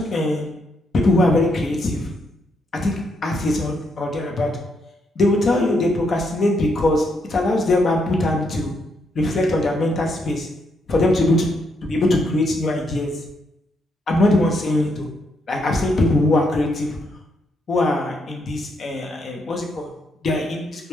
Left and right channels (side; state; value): both; normal; correlation 0.77